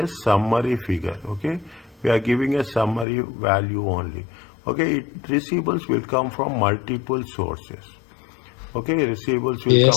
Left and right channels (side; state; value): right; drops out; at 3.1 s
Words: summary figure. Okay, we are giving a summary value only. Okay, receivables will come from multiple sources. Okay, receivables will